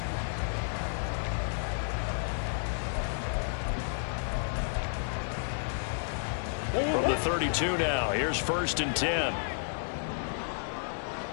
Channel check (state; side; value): silent; right; digital silence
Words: From the 32 now, here's 1st and 10.